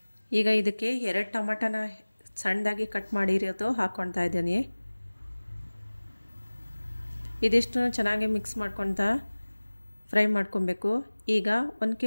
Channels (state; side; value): inverted; both; correlation -1.00